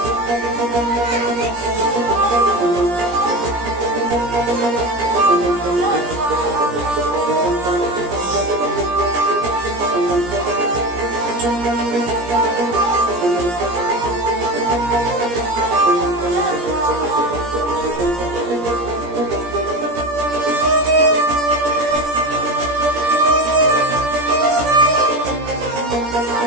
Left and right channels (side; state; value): left; late; 17 ms